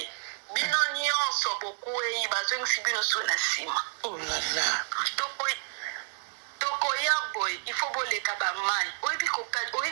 bino nyonso bokwei bazongisi bino so na nsima tokoya boye ifo boleka bamai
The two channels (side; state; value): left; silent; digital silence